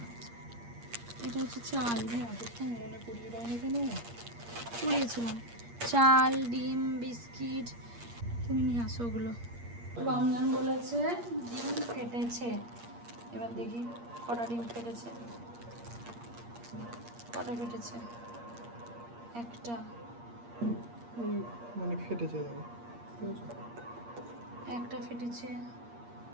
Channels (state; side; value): late; left; 8.5 ms